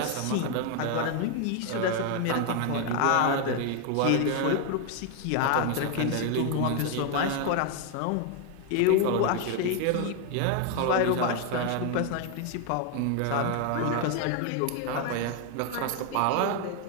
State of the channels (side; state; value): both; different; correlation 0.01